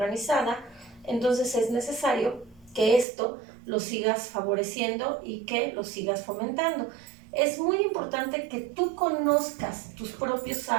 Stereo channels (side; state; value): left; drops out; at 3.1 s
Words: entonces es necesario que esto lo sigas favoreciendo y que lo sigas fomentando. Es muy importante que tú conozcas tus propios